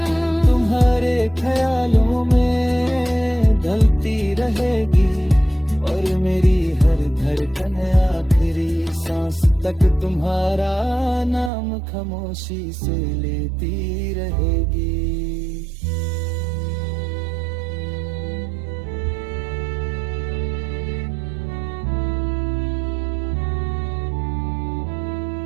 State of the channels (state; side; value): drops out; left; at 11.5 s